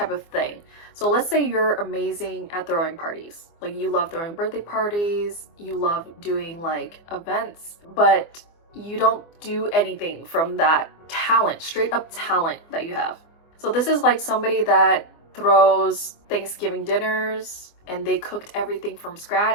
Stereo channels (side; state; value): right; late; 24 ms